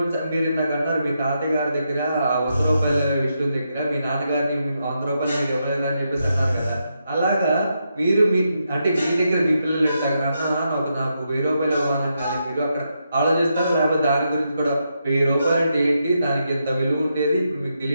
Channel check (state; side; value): inverted; both; correlation -0.83